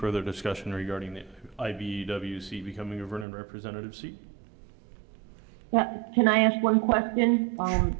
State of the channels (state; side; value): drops out; left; at 3.2 s